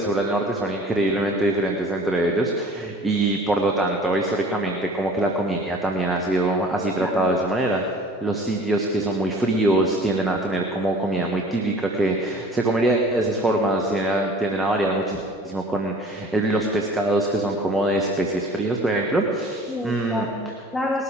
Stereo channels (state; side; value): normal; both; correlation 0.47